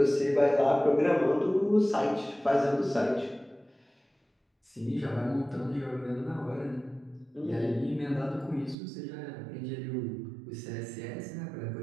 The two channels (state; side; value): drops out; left; at 8.8 s